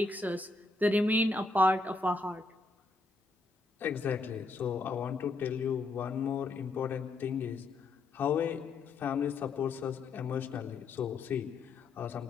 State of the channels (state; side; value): quieter; right; 3.4 dB